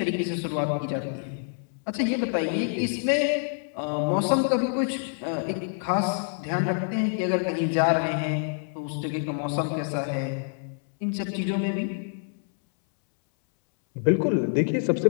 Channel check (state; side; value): silent; right; 60 dB below the other